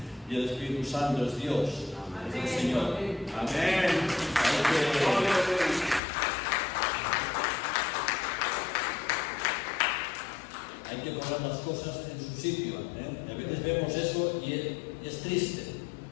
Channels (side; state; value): right; drops out; at 6.0 s